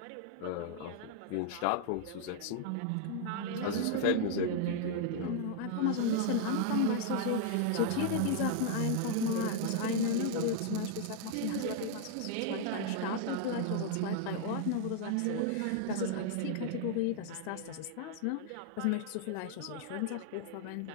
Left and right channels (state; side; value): different; both; correlation 0.00